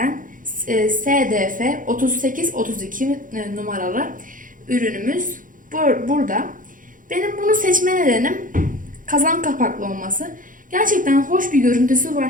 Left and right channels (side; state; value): left; late; 0.39 ms